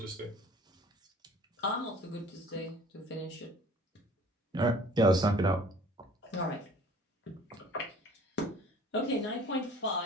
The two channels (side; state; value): both; normal; correlation 0.50